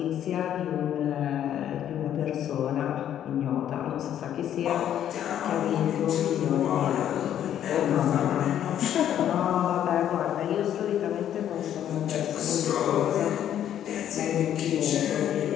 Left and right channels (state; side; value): quieter; right; 10.5 dB